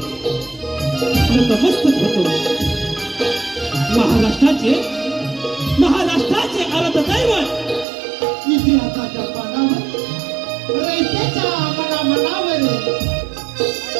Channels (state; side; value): drops out; left; at 7.9 s